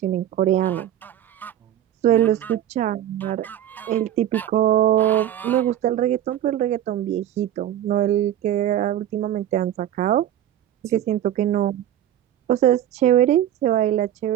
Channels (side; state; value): left; quieter; 11.6 dB